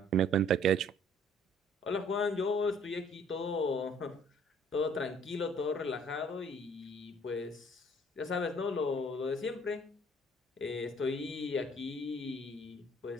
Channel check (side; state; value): both; normal; correlation 0.58